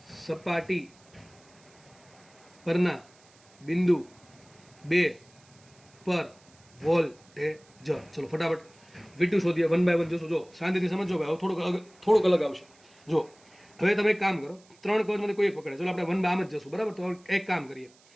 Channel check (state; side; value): noise; right; hiss, 28 dB below the sound